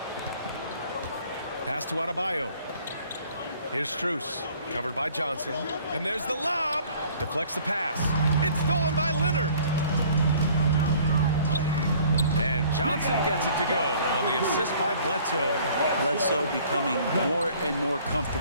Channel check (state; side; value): inverted; both; correlation -0.54